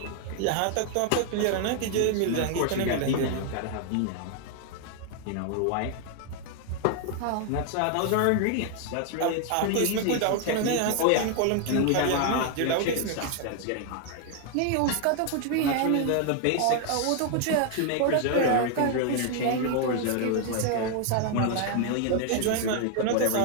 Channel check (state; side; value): different; both; correlation 0.00